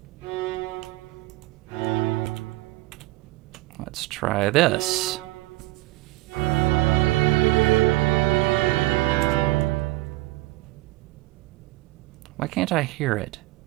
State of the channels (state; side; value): quieter; left; 19.4 dB